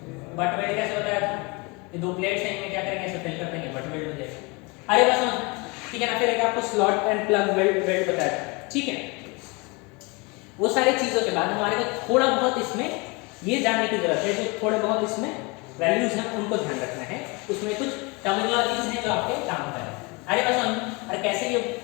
बट वेल्ड कैसे बताया था, ये दो प्लेट्स हैं, इनमें क्या करेंगे, ऐसे फिल कर देंगे, बट वेल्ड हो जाएगा। अरे बस समझ, ठीक है ना। फिर एक आपको स्लॉट एंड प्लग वेल्ड बताया था, ठीक है। वो सारी चीजों के बाद हमारे को थोड़ा बहुत इसमें ये जानने की जरूरत है, जो थोड़े बहुत इसमें वैल्यूज हैं उनको ध्यान रखना है, उसमें कुछ टर्मिनोलॉजीज हैं जो आपके काम का है। अरे बस समझ, और कैसे ये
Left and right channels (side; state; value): right; quieter; 27.9 dB